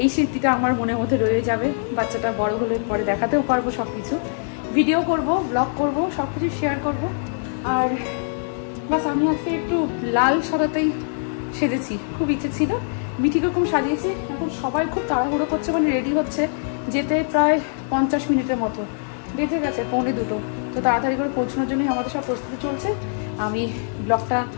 এই স্মৃতিটা আমার মনের মধ্যে রয়ে যাবে। বাচ্চাটা বড় হলে পরে দেখাতেও পারবো, সবকিছু ভিডিও করব, ব্লগ করব, সবকিছু শেয়ার করব। আর বাস আমি আজকে একটু লাল সাদাতেই সেজেছি, খুব ইচ্ছে ছিল। মিঠিকে কম সাজিয়েছি। এখন সবাই খুব তাড়াহুড়ো করছে, মানে রেডি হচ্ছে যেতে প্রায় 50 মিনিটের মতো বেঁচে গেছে, 1:45। তো তাড়াতাড়ি করে পৌঁছানোর জন্যই আমাদের সব প্রস্তুতি চলছে। আমি ব্লগটা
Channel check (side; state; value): right; silent; digital silence